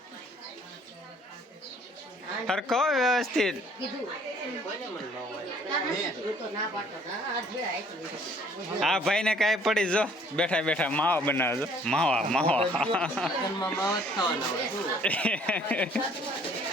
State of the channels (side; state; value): both; normal; correlation 0.59